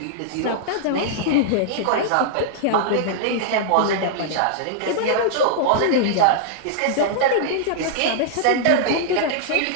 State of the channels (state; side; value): different; both; correlation -0.01